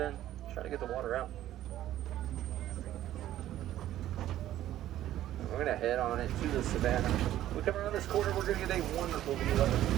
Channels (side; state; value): left; quieter; 13.1 dB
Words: try to get the water out. We're going to head on into the savannah. We come around this corner, we're going to get a wonderful view of